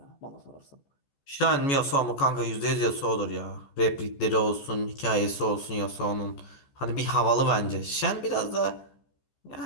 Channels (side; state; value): right; late; 14 ms